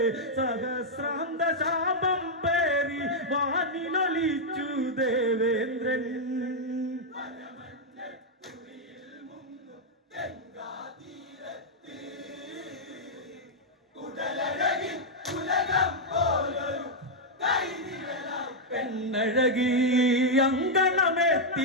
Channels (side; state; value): both; normal; correlation -0.03